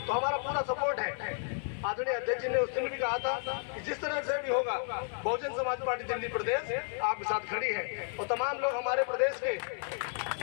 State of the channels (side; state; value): right; silent; 56 dB below the other